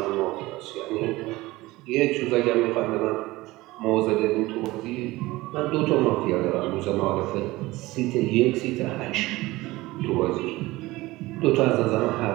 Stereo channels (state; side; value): quieter; left; 19.5 dB